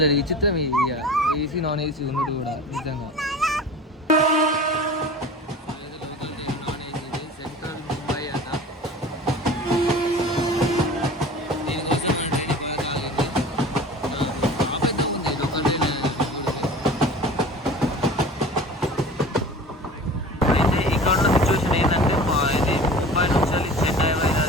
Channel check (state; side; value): normal; both; correlation 0.39